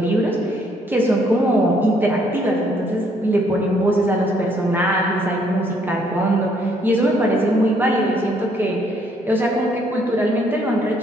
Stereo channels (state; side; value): normal; both; correlation 0.67